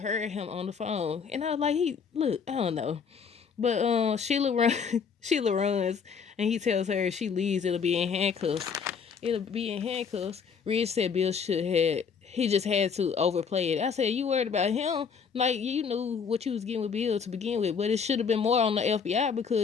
him on the phone. And I was like, I don't know. But Sheila runs, and he tells her if she leaves, it'll be in handcuffs. Ridge said Bill he just had to overplay it. I said, you worried about him? Like, you knew what you was getting with Bill to begin with, but it should have been more on the FBI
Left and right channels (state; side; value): quieter; right; 6.3 dB